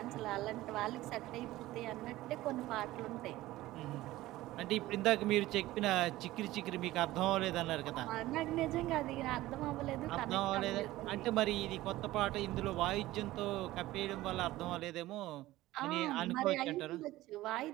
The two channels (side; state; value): left; quieter; 16.8 dB